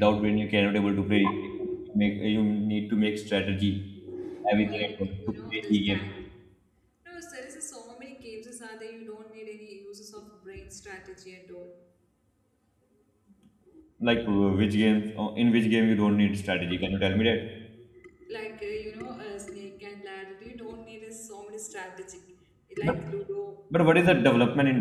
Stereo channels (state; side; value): identical; both; correlation 1.00